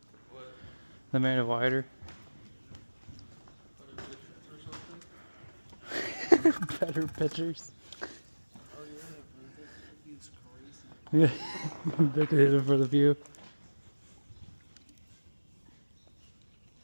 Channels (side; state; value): both; inverted; correlation -1.00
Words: What? They made it wider. Better pictures or something? Better pictures. Oh yeah, that view's crazy. Yeah, they did it for the view.